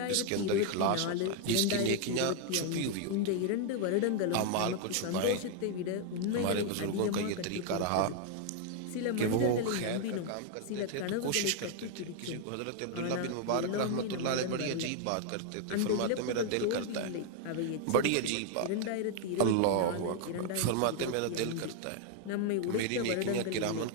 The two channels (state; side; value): different; both; correlation 0.00